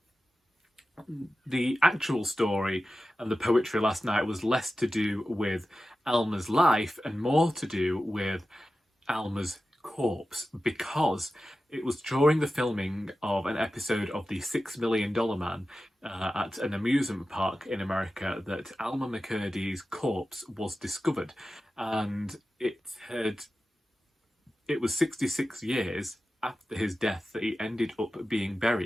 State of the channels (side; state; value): both; normal; correlation 0.94